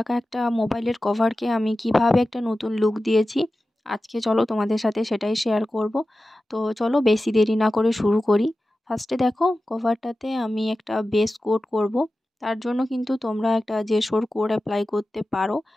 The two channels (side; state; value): both; normal; correlation 0.94